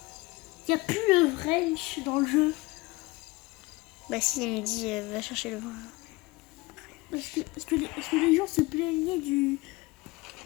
Il n'y a plus le wrench dans le jeu. Bah si, il me dit va chercher le branch. Parce que les gens se plaignaient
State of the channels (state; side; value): quieter; right; 22.5 dB